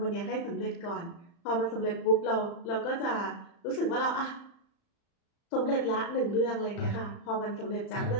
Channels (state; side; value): late; right; 35 ms